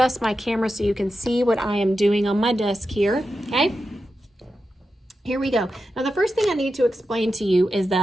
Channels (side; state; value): both; normal; correlation 0.90